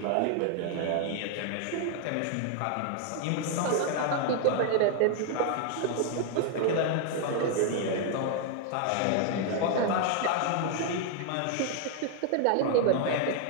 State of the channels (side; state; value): both; different; correlation 0.00